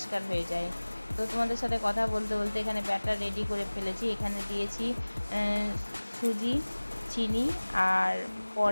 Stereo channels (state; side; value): inverted; both; correlation -1.00